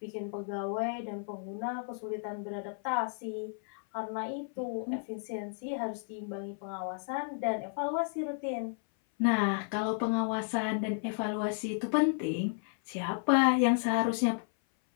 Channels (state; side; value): silent; right; 56 dB below the other